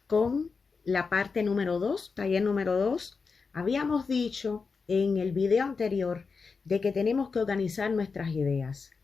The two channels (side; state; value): right; quieter; 4.9 dB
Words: con la parte número 2, taller número 2. Habíamos dicho en el video anterior de que tenemos que organizar nuestras ideas.